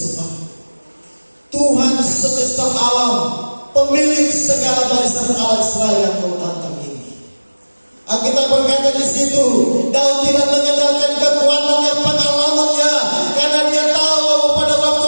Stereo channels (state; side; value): inverted; both; correlation -1.00